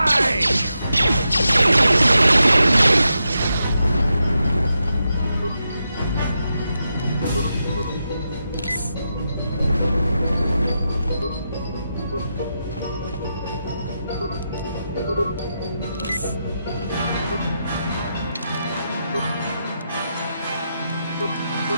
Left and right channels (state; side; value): inverted; both; correlation -0.86